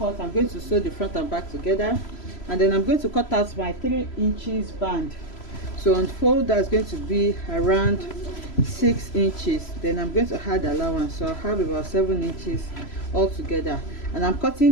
I'm going to sew the front and back together, and then I'm going to cut out my 3 inches band. So on fold, that's going to be around 6 inches. Then I'm going to add allowance, so I'll have about 7 inches altogether, and I'm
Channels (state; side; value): late; right; 3.0 ms